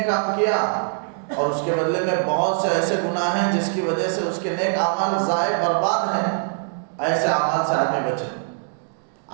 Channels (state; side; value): silent; left; 64 dB below the other